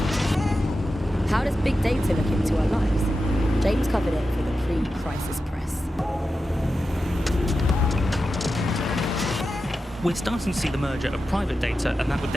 How does big data look into our lives? James covered it for the pre-crisis press. We're starting to see the merger of private data and that with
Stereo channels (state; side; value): normal; both; correlation 0.91